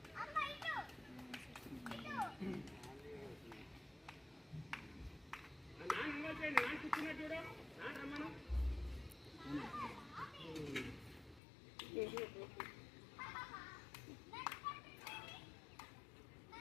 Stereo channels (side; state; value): right; drops out; at 11.4 s